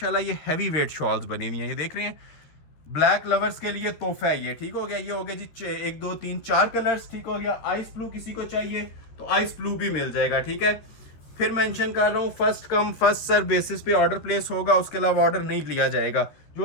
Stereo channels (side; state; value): right; late; 13 ms